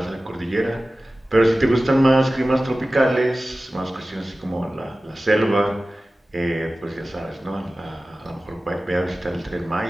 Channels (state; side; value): normal; both; correlation 0.96